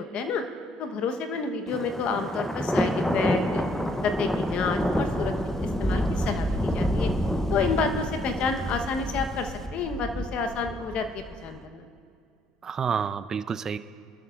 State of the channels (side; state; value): both; normal; correlation 0.68